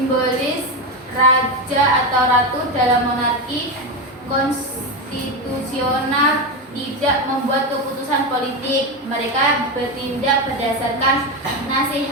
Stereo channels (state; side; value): normal; both; correlation 0.14